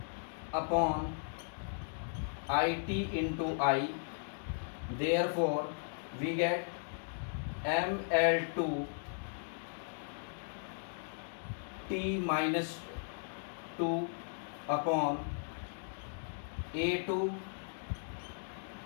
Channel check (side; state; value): right; silent; digital silence